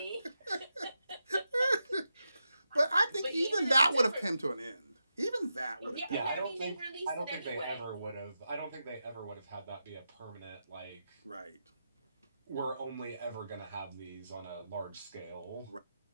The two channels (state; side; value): inverted; both; correlation -0.88